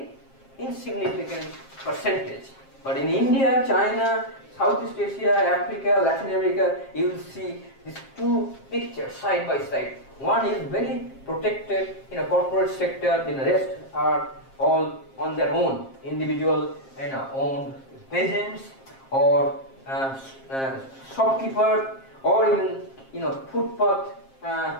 insignificant percentage. But in India, China, Southeast Asia, Africa, Latin America, you will see these two pictures side by side. One is very protected in a corporate sector, the rest are all on their own, individual owned peasants or shopkeeper, or even footpath,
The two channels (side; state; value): right; late; 7.5 ms